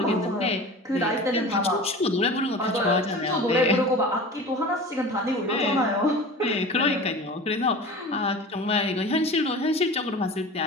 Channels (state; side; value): normal; both; correlation 0.36